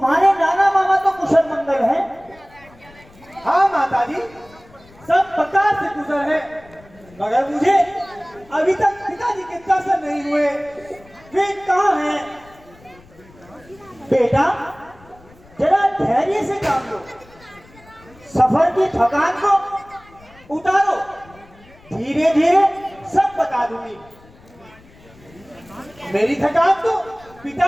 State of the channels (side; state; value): left; noise; rumble, 25 dB below the sound